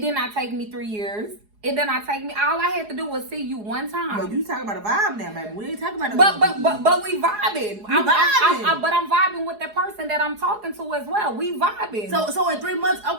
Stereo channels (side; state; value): left; late; 4.8 ms